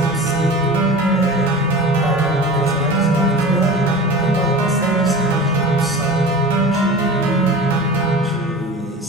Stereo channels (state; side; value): normal; both; correlation 0.36